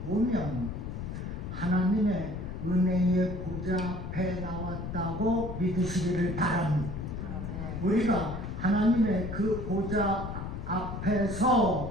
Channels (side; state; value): left; noise; rumble, 6 dB below the sound